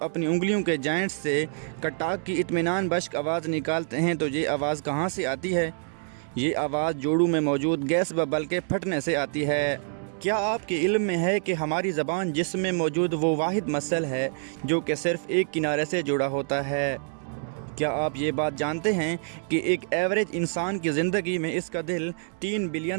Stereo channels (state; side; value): silent; left; 60 dB below the other